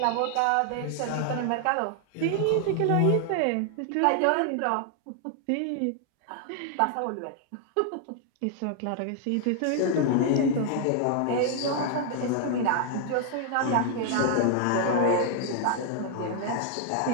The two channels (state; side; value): different; both; correlation 0.00